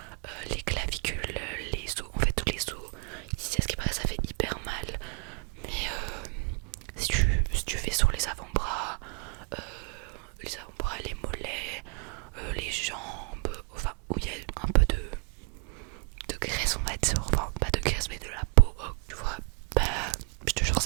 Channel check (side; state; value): left; quieter; 34.0 dB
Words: les clavicules, les os, en fait tous les os. Ici à ce qui paraît ça fait hyper mal. Mais si tu fais sur les avant-bras, les mollets, les jambes, enfin où il y a un peu de graisse on va dire, enfin pas de graisse mais de la peau, tu vois, bah je te jure